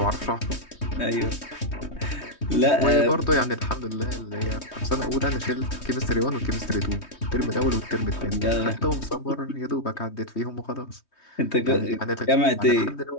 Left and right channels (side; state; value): right; late; 3.2 ms